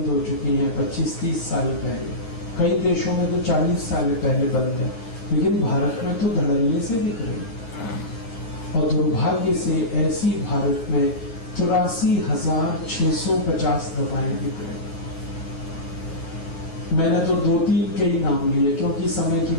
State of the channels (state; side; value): late; right; 9.3 ms